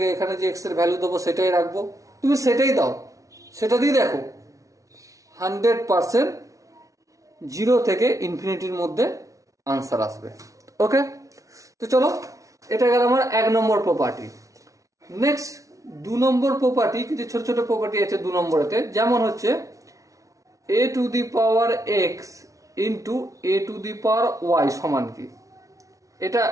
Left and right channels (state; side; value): late; left; 0.16 ms